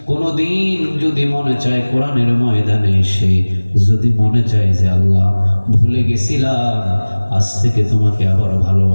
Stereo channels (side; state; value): both; inverted; correlation -1.00